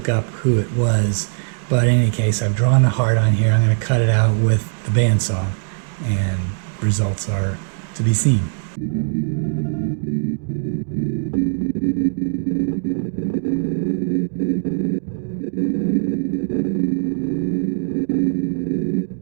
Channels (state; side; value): silent; left; digital silence